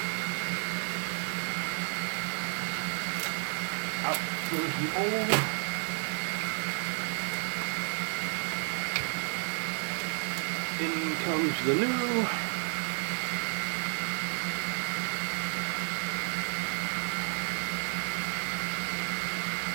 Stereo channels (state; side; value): silent; left; 57 dB below the other